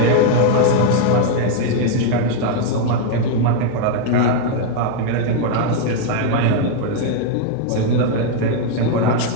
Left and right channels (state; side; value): different; both; correlation 0.00